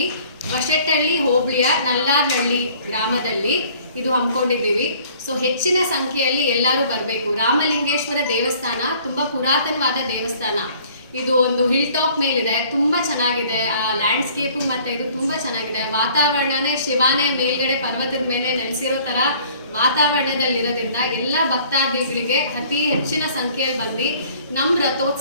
ಬಶೆಟ್ಟಹಳ್ಳಿ ಹೋಬಳಿಯ ನಲ್ಲಾರ್ನಹಳ್ಳಿ ಗ್ರಾಮದಲ್ಲಿ ಇದು ಹಮ್ಮಿಕೊಂಡಿದ್ದೀವಿ. ಸೊ ಹೆಚ್ಚಿನ ಸಂಖ್ಯೆಯಲ್ಲಿ ಎಲ್ಲರೂ ಬರಬೇಕು. ರಾಮಲಿಂಗೇಶ್ವರ ದೇವಸ್ಥಾನ ತುಂಬಾ ಪುರಾತನವಾದ ದೇವಸ್ಥಾನ. ಇದು ಒಂದು ಹಿಲ್ ಟಾಪ್ ಮೇಲಿದೆ, ತುಂಬಾ ಚೆನ್ನಾಗಿದೆ. ಆ ಲ್ಯಾಂಡ್ಸ್ಕೇಪು ಮತ್ತೆ ಇದು ತುಂಬಾ ಚೆನ್ನಾಗಿದೆ. ವಾತಾವರಣನೇ ಶಿವಾನೇ ಮೇಲ್ಗಡೆ ಪರ್ವತದ ಮೇಲೆ ನೆಲೆಸಿರೋ ತರ ವಾತಾವರಣದಲ್ಲಿರೋದ್ರಿಂದ ಎಲ್ಲ ಭಕ್ತಾದಿಗಳಿಗೆ ಅತಿ ಹೆಚ್ಚಿನ ಸಂಖ್ಯೆಯಲ್ಲಿ ಬಂದು ನಮ್ಮ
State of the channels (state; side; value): inverted; both; correlation -0.55